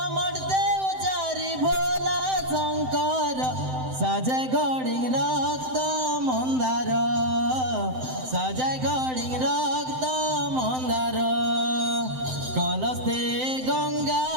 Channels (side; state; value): left; late; 7.8 ms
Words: উচারি ভোলা শঙ্কর সাজে গড়িং রক্ত মন্দার সাজায় গড়িং রক্ত মন্দার কলস্তে